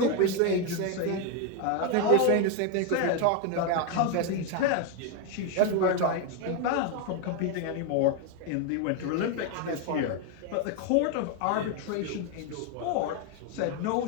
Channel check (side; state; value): both; different; correlation 0.01